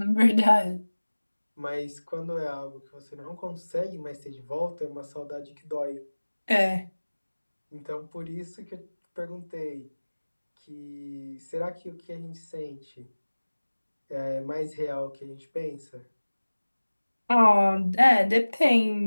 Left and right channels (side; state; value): both; inverted; correlation -1.00